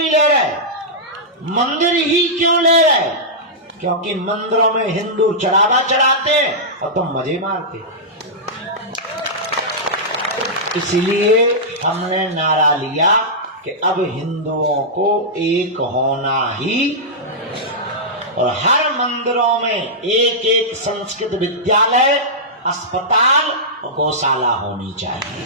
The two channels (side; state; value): both; normal; correlation -0.12